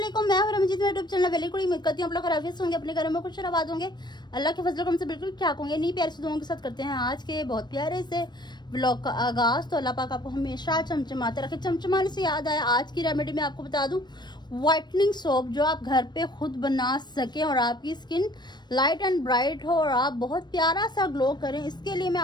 मैं हूं रमजीत, मेरे यूट्यूब चैनल वेली कुड़ी। उम्मीद करती हूं आप लोग खैरियत होंगे, अपने घरों में खुश आबाद होंगे, अल्लाह के फजल से बिल्कुल ठीक होंगे। नहीं प्यारे से दुआओं के साथ करते हैं आज के बहुत प्यारे से व्लॉग का आगाज। तो अल्लाह पाक आपको हमेशा चमचमाते रखे। चमचमाने से याद आया, आज की रेमेडी में आपको बता दूं व्हाइटनिंग सोप जो आप घर पे खुद बना सकें और आपकी स्किन लाइट एंड ब्राइट हो और आप बहुत प्यारा सा ग्लो करें। इसके लिए मैं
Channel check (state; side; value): late; right; 0.21 ms